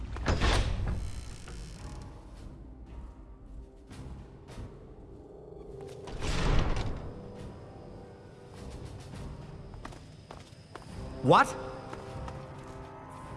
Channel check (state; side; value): identical; both; correlation 1.00